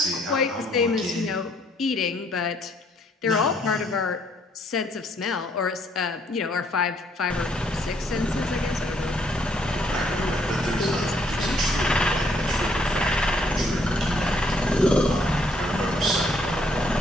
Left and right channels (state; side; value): normal; both; correlation 0.68